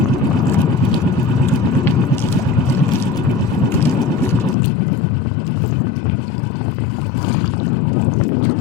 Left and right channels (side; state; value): right; drops out; at 4.5 s